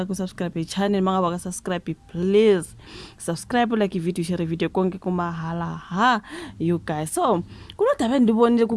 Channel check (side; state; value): both; identical; correlation 1.00